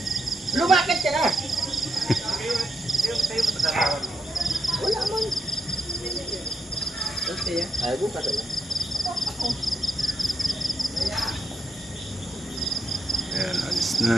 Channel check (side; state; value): both; normal; correlation 0.82